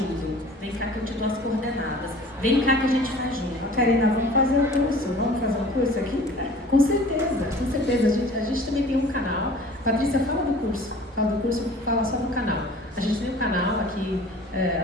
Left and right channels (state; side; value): normal; both; correlation 0.46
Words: vem cá que eu te dou as coordenadas, vem cá que a gente faz junto. Karina, vamos fazer um curso aqui? Com certeza, com certeza. A gente também tem um canal. Patrícia, fala do curso, fala só do canal. A gente tem um canal aqui,